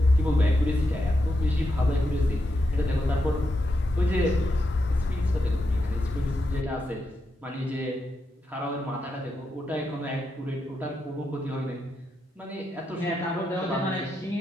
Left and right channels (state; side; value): normal; both; correlation 0.84